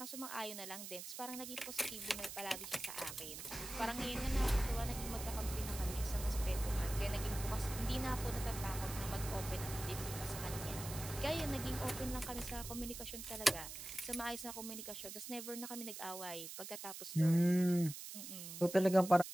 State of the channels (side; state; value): right; noise; hiss, 9 dB below the sound